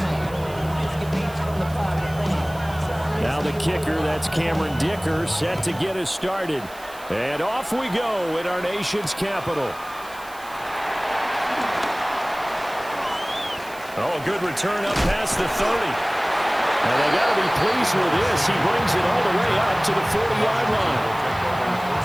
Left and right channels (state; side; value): noise; right; hiss, 20 dB below the sound